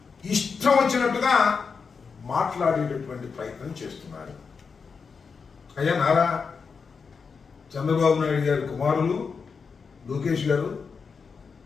ఇష్టం వచ్చినట్టుగా మాట్లాడేటటువంటి ప్రయత్నం చేస్తున్నారు. అయ్యా నారా చంద్రబాబు నాయుడు గారి కుమారులు లోకేష్ గారు,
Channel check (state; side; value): quieter; right; 5.4 dB